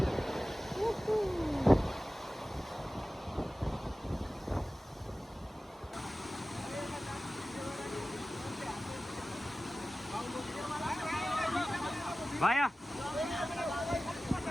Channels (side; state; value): both; normal; correlation 0.96